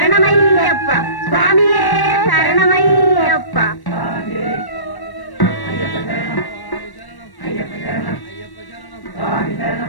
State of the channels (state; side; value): late; right; 1.1 ms